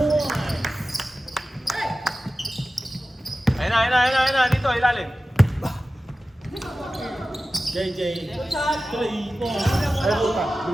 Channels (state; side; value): normal; both; correlation 0.95